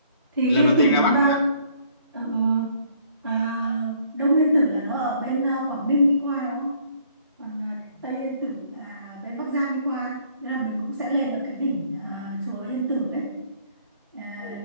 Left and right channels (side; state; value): both; inverted; correlation -0.62